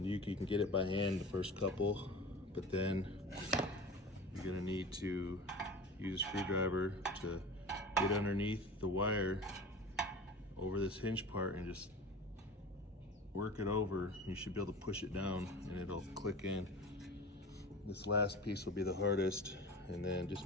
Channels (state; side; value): normal; both; correlation 0.35